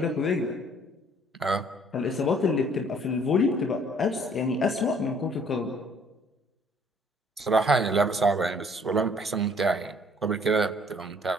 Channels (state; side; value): normal; both; correlation 0.59